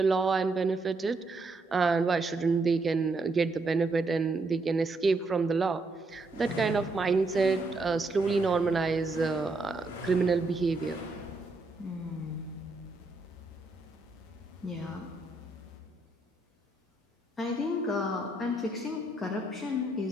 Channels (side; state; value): left; quieter; 3.1 dB